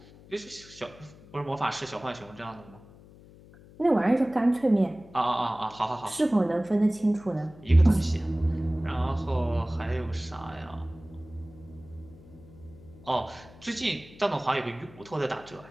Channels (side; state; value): left; noise; hum, 22 dB below the sound